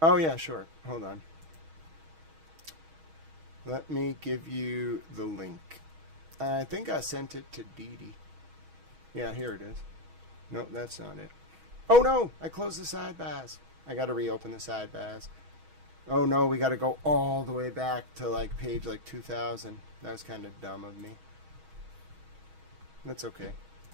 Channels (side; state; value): left; late; 6.3 ms